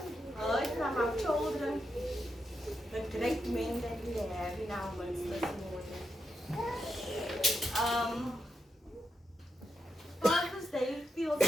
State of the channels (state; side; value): normal; both; correlation 0.85